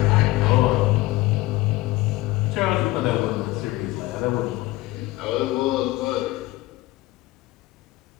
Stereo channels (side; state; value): right; quieter; 18.7 dB